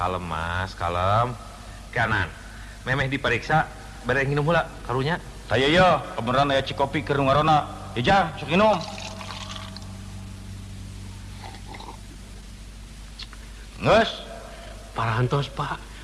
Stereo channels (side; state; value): both; identical; correlation 1.00